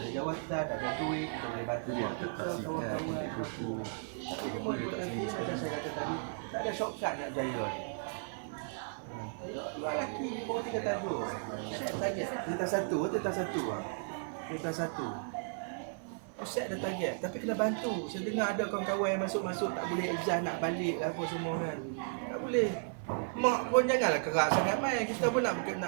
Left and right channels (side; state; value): left; silent; 55 dB below the other